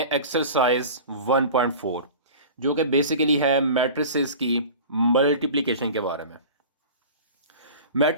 एक्सरसाइज 1.4, जो कि बेसिकली है मैट्रिसेस की मल्टीप्लिकेशन के बारे में।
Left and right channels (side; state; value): both; inverted; correlation -0.38